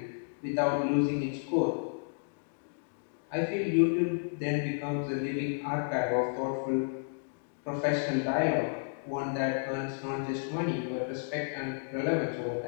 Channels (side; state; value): right; silent; digital silence